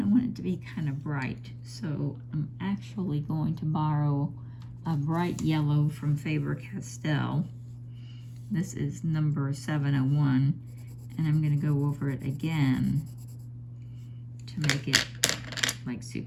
I want it to be kind of bright, so I'm actually going to borrow a bright yellow from Faber-Castell. This is number 701, and I'm going to go over it again to make it like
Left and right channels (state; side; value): identical; both; correlation 1.00